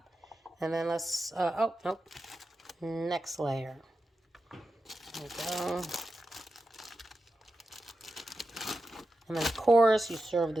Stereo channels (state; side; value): normal; both; correlation 0.90